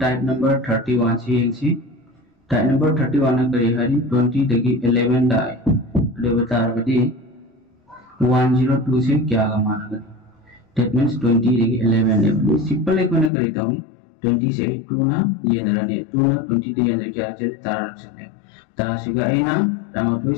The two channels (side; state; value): right; drops out; at 13.3 s